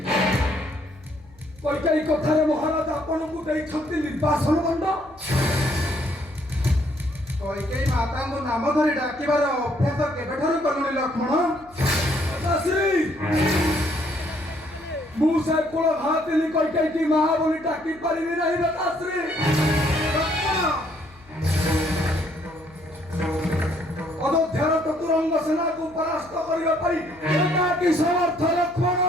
କୈକେୟୀ କଥାରେ ମହାରାଜ ଆପଣଙ୍କୁ ଦେଇଛନ୍ତି ନିର୍ବାସନ ଦଣ୍ଡ। କୈକେୟୀ ମାତାଙ୍କୁ ନାମ ଧରି ଡାକିବାର ଅଭ୍ୟାସ କେବେଠାରୁ କଲୁଣି ଲକ୍ଷ୍ମଣ? ଲତାଶ୍ରୀ, ମୁଁ ସେ କୁଳ ଭାତିନି କୈକେୟୀ ମା ବୋଲି ଡାକି ପାରିବି ନାହିଁ ଲତାଶ୍ରୀ। ଲକ୍ଷ୍ମଣ, ଅଯୋଧ୍ୟାର ଚତୁରଙ୍ଗ ସେନାକୁ ପରାସ୍ତ କରିବା ପାଇଁ ଏକାକୀ ସମର୍ଥ ଲକ୍ଷ୍ମଣ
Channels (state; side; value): noise; left; hum, 26 dB below the sound